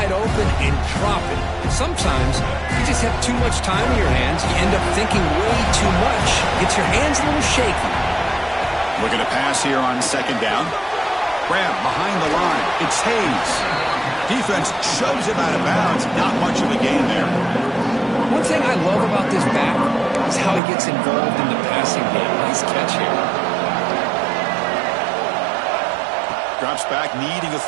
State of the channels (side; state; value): left; drops out; at 20.6 s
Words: open and drop it. Sometimes you just have too much time in your hands. You end up thinking way too much. Gets your hands a little shaky. Looking to pass here on second down. Grab behind the line. It's Hayes. Defense shoves him out of bounds. Not much of a gain there. One thing I love about this back is how he gets involved in the passing game. Nice catch here. Drops back, needing a